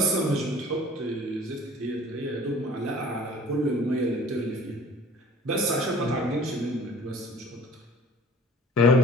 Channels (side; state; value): both; normal; correlation 0.48